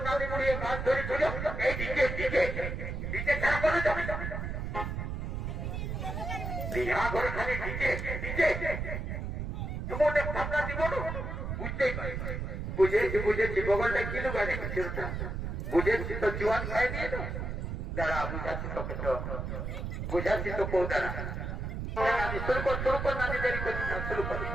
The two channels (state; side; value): noise; right; rumble, 4 dB below the sound